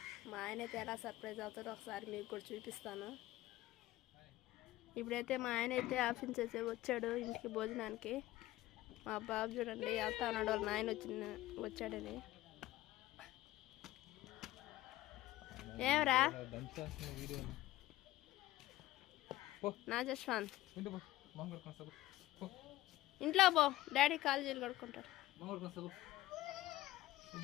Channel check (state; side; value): quieter; right; 16.4 dB